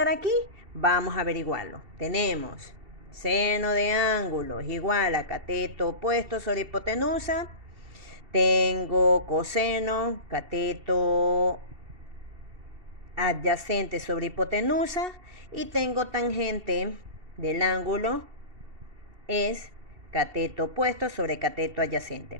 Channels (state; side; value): late; left; 2.7 ms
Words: aquí? Vamos a averiguarlo. Tenemos seno de ángulo es igual a cateto opuesto sobre hipotenusa. Tengo coseno, cateto adyacente sobre hipotenusa. Y tengo tangente del ángulo es cateto opuesto sobre cateto adyacente.